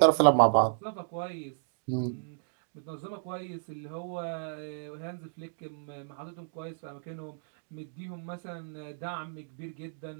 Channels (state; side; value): silent; left; digital silence